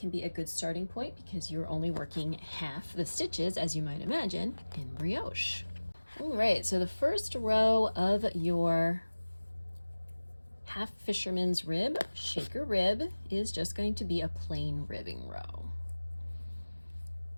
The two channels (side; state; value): both; inverted; correlation -1.00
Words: be a good starting point because you're only working half the stitches, as you might imagine, in brioche. All right, so the first row of your half fisherman's rib, shaker rib, is just going to be a plain ribbing row.